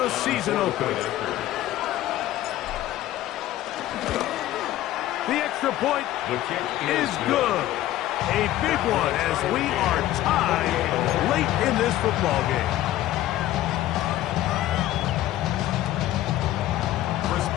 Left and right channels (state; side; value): quieter; right; 14.2 dB